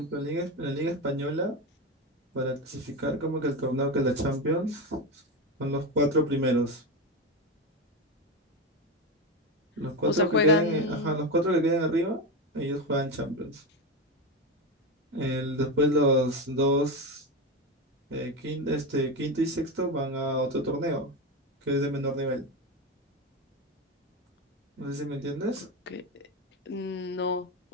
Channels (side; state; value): both; normal; correlation 0.17